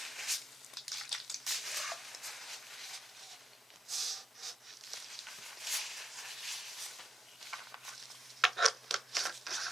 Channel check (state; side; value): normal; both; correlation 0.83